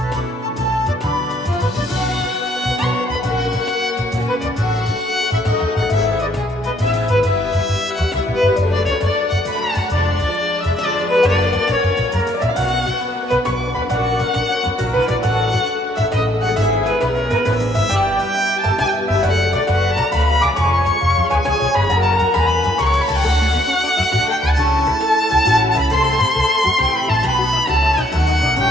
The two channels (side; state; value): both; normal; correlation 0.67